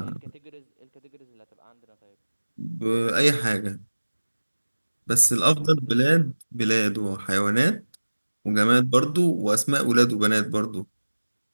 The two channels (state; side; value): inverted; both; correlation -1.00